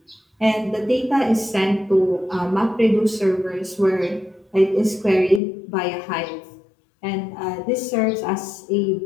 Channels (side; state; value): right; drops out; at 5.4 s